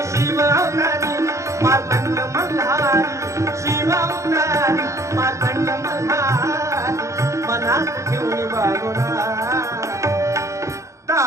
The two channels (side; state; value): left; late; 0.15 ms